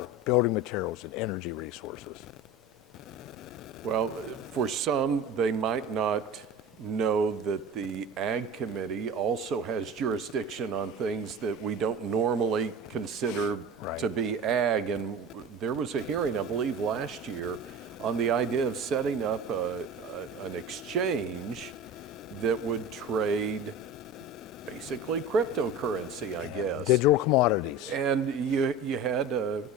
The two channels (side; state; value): both; normal; correlation 0.34